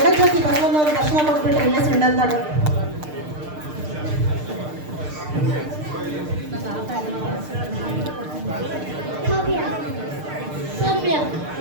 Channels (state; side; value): late; left; 6.6 ms